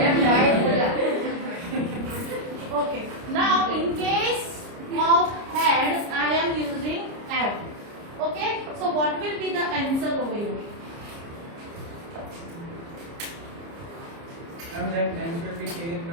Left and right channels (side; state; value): left; late; 30 ms